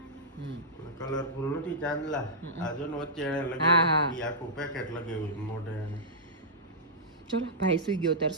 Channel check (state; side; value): normal; both; correlation -0.12